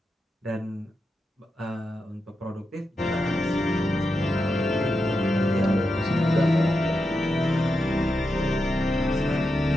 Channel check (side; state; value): both; normal; correlation 0.88